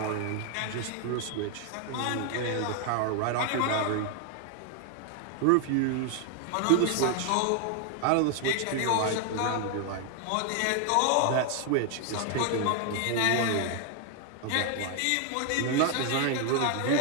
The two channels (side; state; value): both; different; correlation 0.00